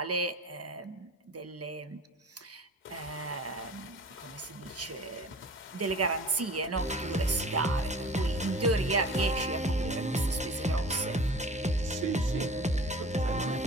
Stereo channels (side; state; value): both; normal; correlation 0.42